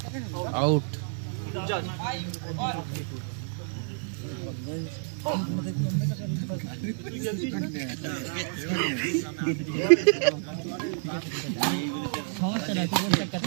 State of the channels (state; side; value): silent; left; digital silence